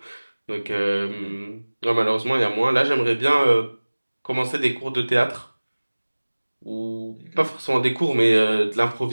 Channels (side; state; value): both; inverted; correlation -1.00